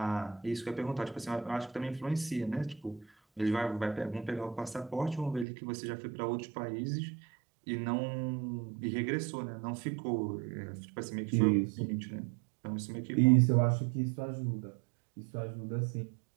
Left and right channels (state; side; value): drops out; left; at 5.5 s